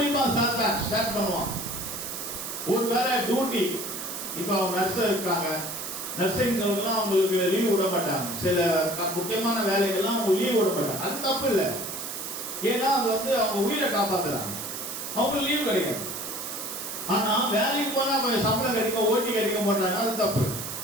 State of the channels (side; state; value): right; noise; hiss, 6 dB below the sound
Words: சாத்தான். ஸ்டார்ட் பண்ணுவான். ஒருவேளை டியூட்டி, இப்ப அவங்க நர்ஸ் இருக்காங்க, நர்சிங் அவங்களுக்கு லீவ் விட மாட்டாங்க. சில முக்கியமான வேலைகள்லாம் அவங்க லீவ் விட மாட்டாங்க. அது தப்பு இல்லை. ஏன்னா அது அவங்க உயிரை காப்பாத்துறாங்க, அவங்களுக்கு லீவ் கிடைக்காது. ஆனா வேலைக்கு போனா சம்பளம் கிடைக்கும், ஓட்டி கிடைக்க மாட்டாங்க, அது தப்பு.